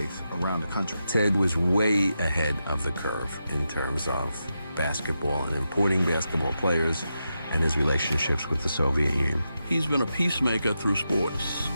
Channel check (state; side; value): inverted; both; correlation -0.87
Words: around the country. Ted was way ahead of the curve in terms of basketball and importing basketball players and his relationships with the Soviet Union. He's been a peacemaker through sports.